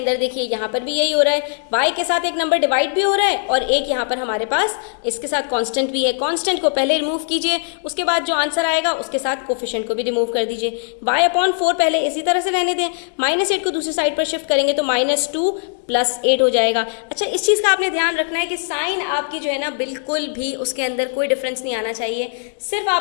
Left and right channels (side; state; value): right; silent; 66 dB below the other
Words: देखिए यहाँ पर भी यही हो रहा है, y के साथ एक नंबर डिवाइड भी हो रहा है और एक यहाँ पर हमारे पास इसके साथ कांस्टेंट भी है। कांस्टेंट को पहले रिमूव कीजिए, उसके बाद जो आंसर आएगा उसके साथ कोफिशिएंट को भी रिमूव कर दीजिए। y/4 पहले इसी तरह से रहने दें, -8 को दूसरी साइड पर शिफ्ट करेंगे तो -2 + 8 हो जाएगा। अच्छा, इस चीज़ का आपने ध्यान रखना है कि साइन आपकी जो है ना बिल्कुल भी उसके अंदर कोई डिफरेंस नहीं आना चाहिए। सिर्फ